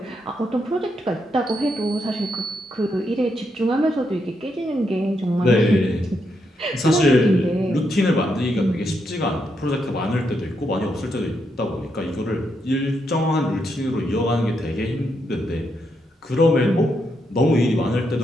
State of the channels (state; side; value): normal; both; correlation 0.80